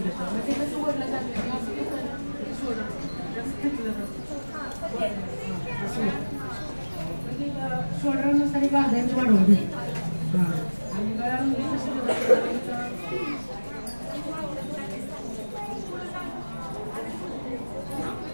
घेतो. मग ते कसं वडलं जातं शोल्डर जास्त घेतलं जातं असं शोल्डरनुसार एक अर्धा इंच वाढवून घेतो. आणि गळ्यामध्ये कसं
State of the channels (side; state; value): both; inverted; correlation -1.00